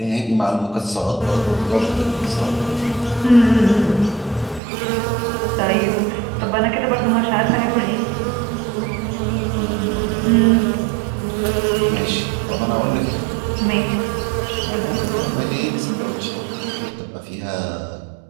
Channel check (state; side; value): drops out; left; at 4.6 s